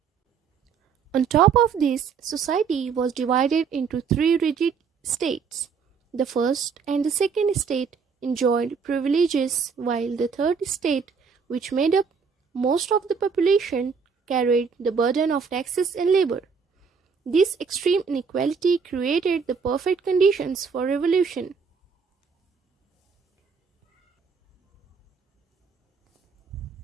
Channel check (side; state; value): left; quieter; 5.8 dB